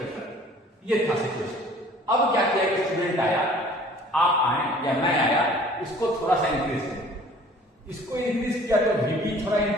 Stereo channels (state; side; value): normal; both; correlation 0.51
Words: ये था सिचुएशन। अब क्या किया, एक स्टूडेंट आया, आप आए या मैं आया, इसको थोड़ा सा इंक्रीज किया, इसको इंक्रीज किया तो VP थोड़ा